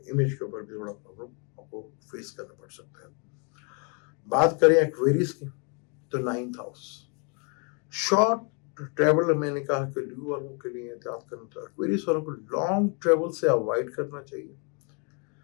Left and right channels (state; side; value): quieter; right; 36.1 dB